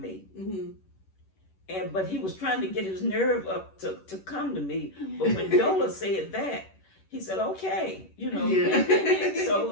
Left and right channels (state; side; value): late; right; 11 ms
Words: But he was trying to get his nerve up to come to me. But when Dola said that, he said, okay, Yeah.